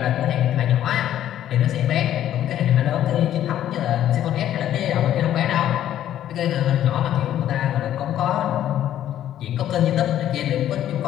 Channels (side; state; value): right; quieter; 11.6 dB